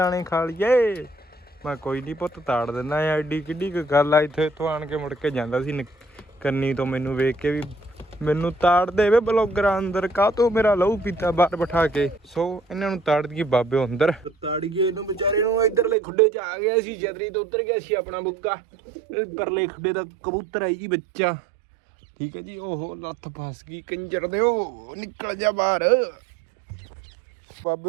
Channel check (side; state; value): left; drops out; at 16.0 s